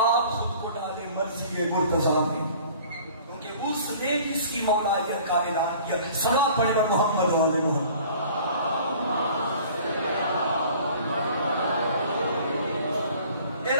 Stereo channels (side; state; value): both; inverted; correlation -0.49